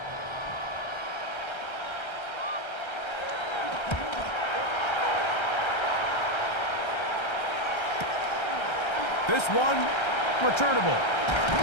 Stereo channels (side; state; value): right; late; 1.3 ms